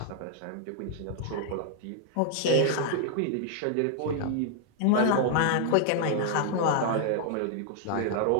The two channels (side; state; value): both; different; correlation 0.00